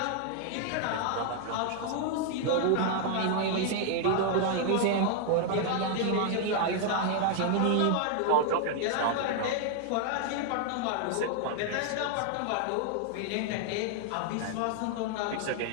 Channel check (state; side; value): different; both; correlation 0.00